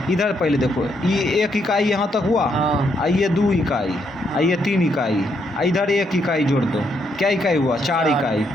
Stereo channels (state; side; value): normal; both; correlation 0.76